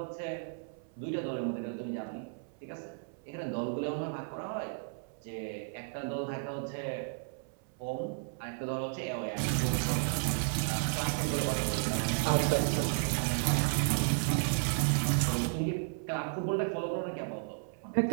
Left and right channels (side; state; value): left; silent; 55 dB below the other